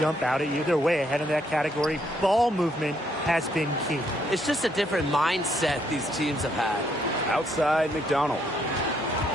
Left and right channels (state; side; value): normal; both; correlation 0.72